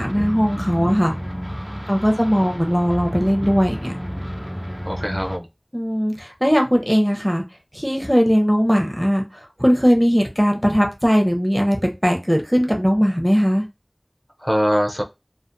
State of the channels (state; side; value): identical; both; correlation 1.00